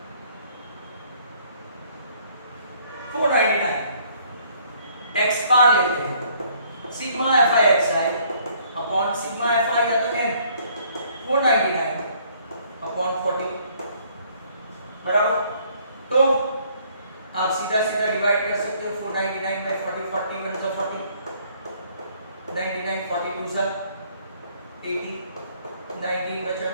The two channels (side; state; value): both; inverted; correlation -0.62